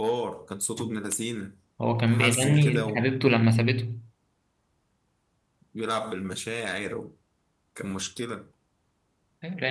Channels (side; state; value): both; identical; correlation 1.00